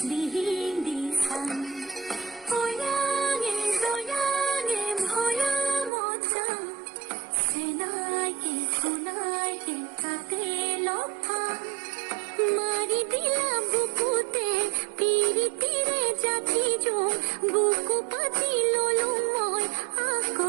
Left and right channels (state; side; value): drops out; left; at 5.9 s